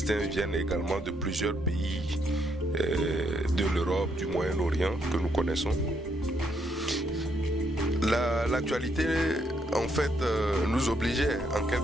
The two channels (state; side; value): normal; both; correlation 0.74